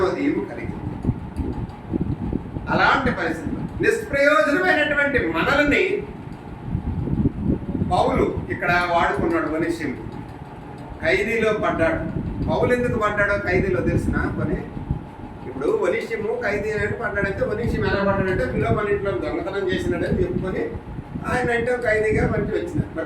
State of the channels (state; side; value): identical; both; correlation 1.00